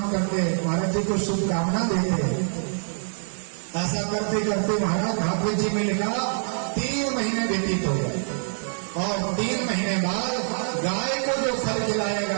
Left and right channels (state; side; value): silent; left; 62 dB below the other